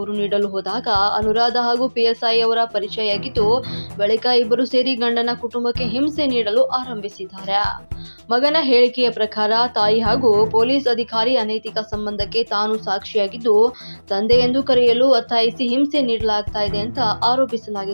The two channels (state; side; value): inverted; both; correlation -1.00